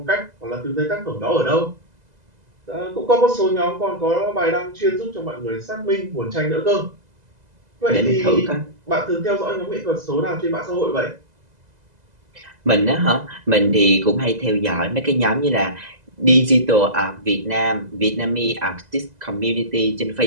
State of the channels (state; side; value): late; left; 2.0 ms